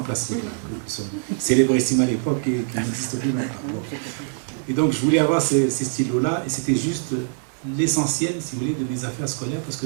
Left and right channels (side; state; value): left; silent; digital silence